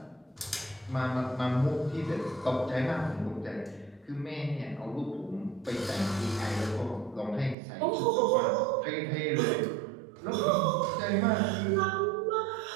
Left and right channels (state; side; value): drops out; left; at 7.6 s